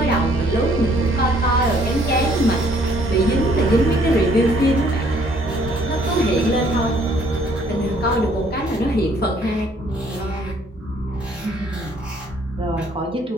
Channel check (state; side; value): normal; both; correlation 0.63